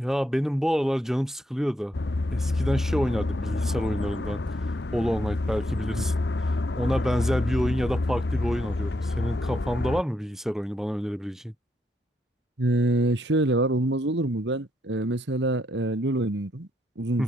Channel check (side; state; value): both; normal; correlation 0.77